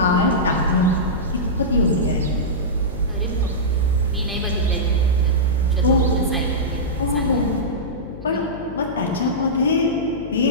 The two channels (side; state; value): left; noise; hum, 13 dB below the sound